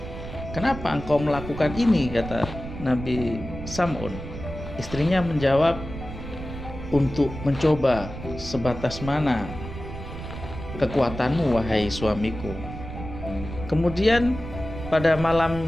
"Kenapa engkau melakukan ini?" kata Nabi Sam'un. Istrinya menjawab, "Untuk mencoba sebatas mana kekuatanmu, wahai suamiku." Kemudian pada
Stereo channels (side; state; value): right; noise; rumble, 10 dB below the sound